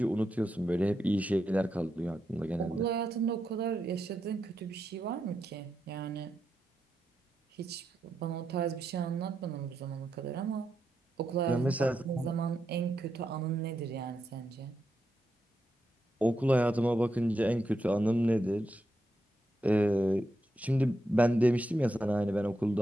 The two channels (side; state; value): both; normal; correlation 0.85